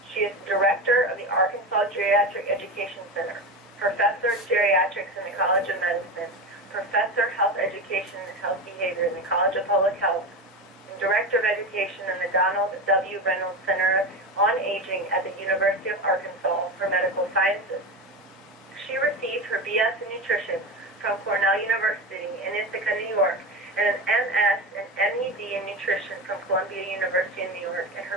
She is Director of the Arkansas Geriatric Education Center, Professor of Geriatrics in the College of Medicine, Professor of Health Education and Health Behavior in the College of Public Health, and Director of Education in the Donald W. Reynolds Center on Aging at the University of Arkansas for Medical Sciences. She received her BS in Nutrition from Cornell University in Ithaca, New York, and an MS and MED in Nutrition from Columbia University in New York, and her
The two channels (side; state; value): both; normal; correlation 0.22